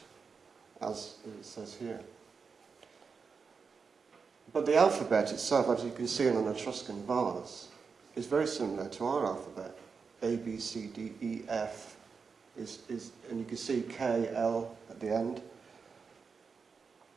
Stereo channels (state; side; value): quieter; left; 5.3 dB